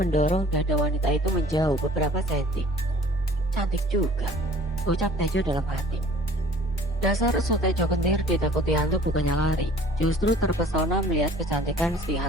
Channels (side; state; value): both; normal; correlation 0.49